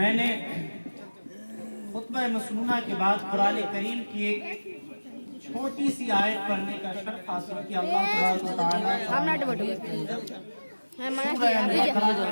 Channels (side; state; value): both; inverted; correlation -1.00